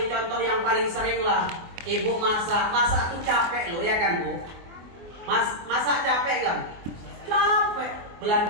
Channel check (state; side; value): late; left; 24 ms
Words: contoh yang paling sering lah. Ibu masak tuh capek loh ya kan Bu. Masak capek gak? Capek.